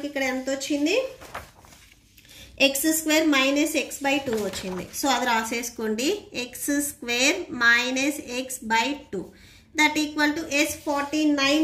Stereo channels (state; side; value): identical; both; correlation 1.00